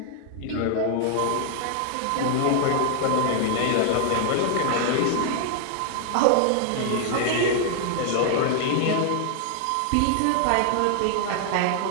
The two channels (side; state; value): both; different; correlation -0.01